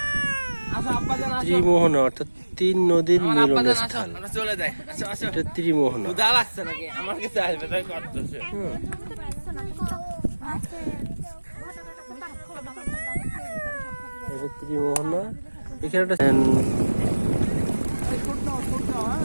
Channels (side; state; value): both; inverted; correlation -1.00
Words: ত্রিমোহনা অর্থাৎ তিন নদীর মিলনস্থল। এটা ত্রিমোহনা। এটা ত্রিমোহনা। এখানে একটা